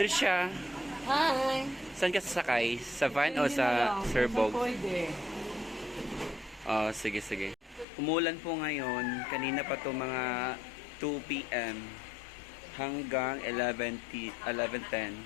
Hi! Saan ka sasakay? Sa van o sa Sir Bogs? Pwede. Oh, sige, sige. Umulan po ngayon. Kanina pa to mga 2 p.m. hanggang 11:10.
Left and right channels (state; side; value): drops out; right; at 7.9 s